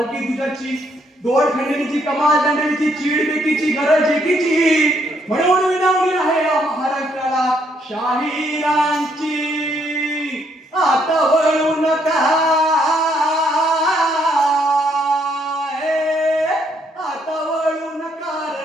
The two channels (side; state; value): both; normal; correlation 0.71